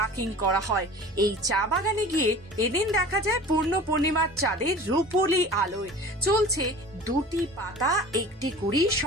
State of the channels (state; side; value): normal; both; correlation 0.41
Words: করা হয়। এই চা বাগানে গিয়ে এদিন দেখা যায় পূর্ণ পূর্ণিমার চাঁদের রূপোলি আলোয় চলছে দুটি পাতা একটি কুড়ি